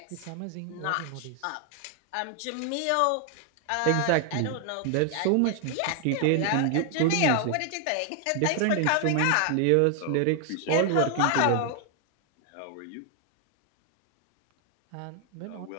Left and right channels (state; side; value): different; both; correlation 0.00